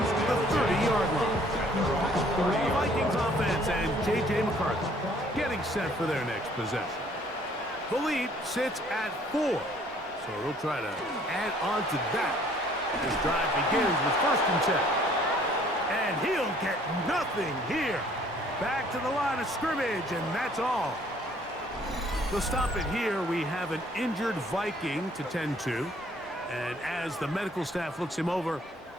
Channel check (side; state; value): both; normal; correlation 0.59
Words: the 30-yard line. The Vikings offense and J.J. McCarthy getting set for their next possession. The lead sits at 4, so they'll try to add on to that. This drive begins with 1st and 10. And he'll get nothing here. Back to the line of scrimmage, and that's all. To stop it here, we have an injured Viking to tend to. And as the medical staff looks him over,